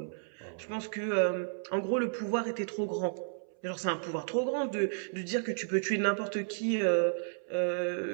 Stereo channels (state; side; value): silent; left; 56 dB below the other